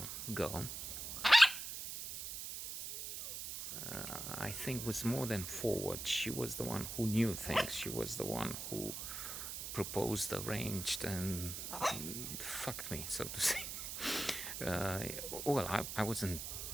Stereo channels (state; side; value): noise; right; hiss, 6 dB below the sound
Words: girl, I think, was more than forward. She was the one who knew things. She was the one who proposed, arranged, and fucked me, so to say. Well, I wasn't.